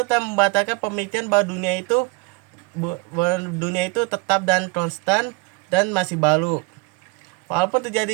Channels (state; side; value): quieter; left; 28.1 dB